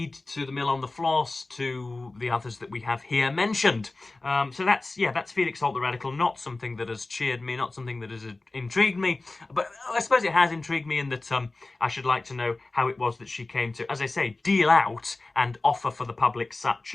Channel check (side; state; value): right; quieter; 3.2 dB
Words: to the Mill on the Floss, to the others that we have here mentioned. So that's Felix Holt the Radical, not something that has cheered me, not something that has intrigued me, but I suppose it has intrigued me in that I should like to know how it was that she came to, as I say, deal out and offer for the public such